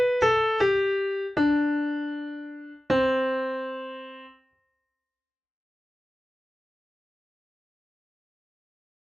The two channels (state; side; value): normal; both; correlation 0.96